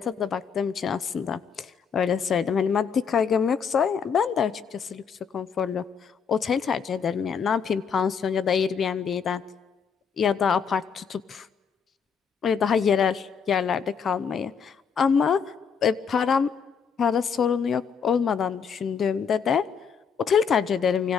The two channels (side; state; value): right; quieter; 6.5 dB